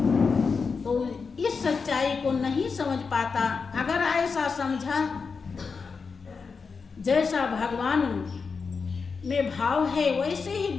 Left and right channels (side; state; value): right; quieter; 5.1 dB